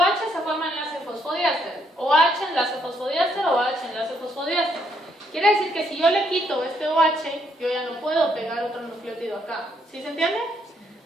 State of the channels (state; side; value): normal; both; correlation 0.73